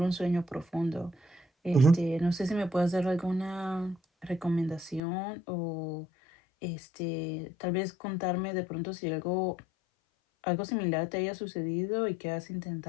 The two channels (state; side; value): drops out; right; at 5.0 s